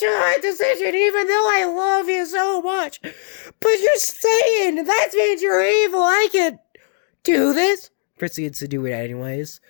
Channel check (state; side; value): silent; right; digital silence